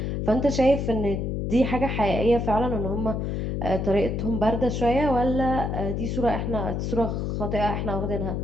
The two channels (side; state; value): left; noise; hum, 1 dB below the sound